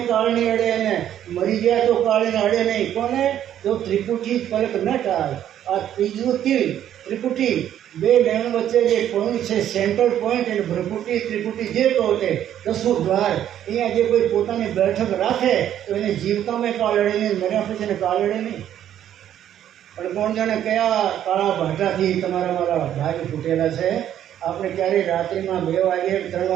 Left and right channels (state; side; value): quieter; left; 10.8 dB